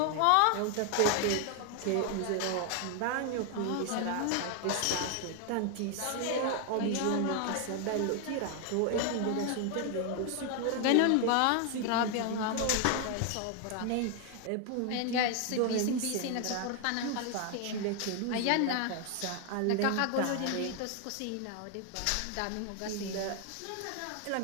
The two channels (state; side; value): different; both; correlation 0.00